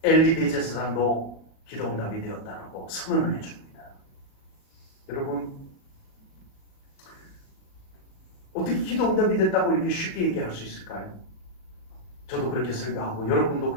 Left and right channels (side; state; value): right; late; 37 ms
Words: 엘리 대제사장도 기도 응답이 되었다라고 선언을 해줍니다. 여러분, 어떻게 기도 응답이 됐다고 이렇게 쉽게 얘기할 수 있을까요? 저도 그렇게 설교하고 여러분도